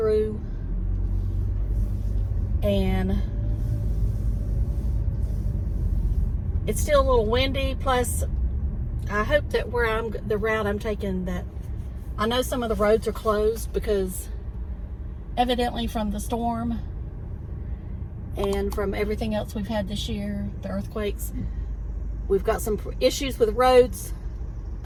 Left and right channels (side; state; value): both; identical; correlation 1.00